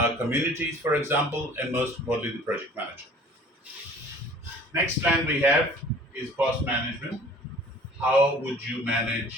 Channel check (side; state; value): both; normal; correlation 0.48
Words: communities, for example, and most importantly, the project manager. Next plan we have is cost management. How would you